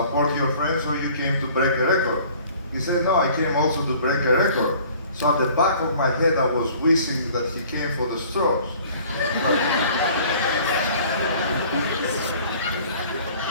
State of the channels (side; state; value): both; inverted; correlation -0.51